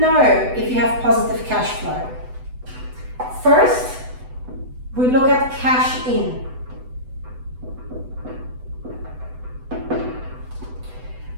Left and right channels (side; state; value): left; late; 8.0 ms